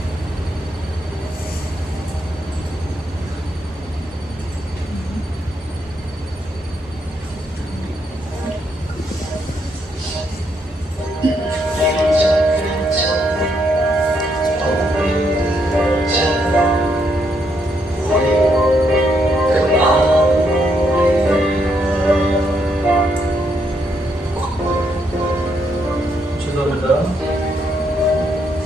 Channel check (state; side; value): normal; both; correlation 0.76